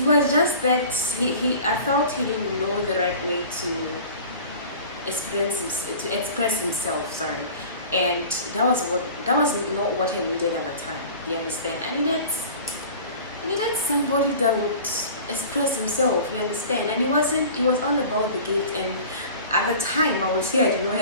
was just that I felt he didn't know the right way to express himself, sorry. And that was not what I needed at the time. You understand? I needed somebody that would express himself, you understand? And it was all about the gift, and at the time I would say I did not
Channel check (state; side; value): inverted; both; correlation -0.41